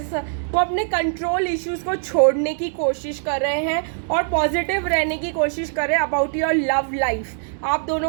वो अपने कंट्रोल इश्यूज़ को छोड़ने की कोशिश कर रहे हैं और पॉजिटिव रहने की कोशिश कर रहे हैं अबाउट योर लव लाइफ। आप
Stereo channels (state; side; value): silent; left; digital silence